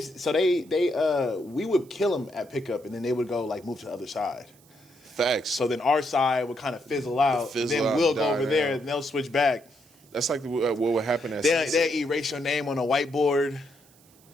so we would kill them at pickup, and then they would go like move to the other side. Facts. So then our side would kind of fizzle out. Then we'll go over there, and they'll switch back. That's like what would happen at They erase your name on a whiteboard.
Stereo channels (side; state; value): right; noise; hiss, 28 dB below the sound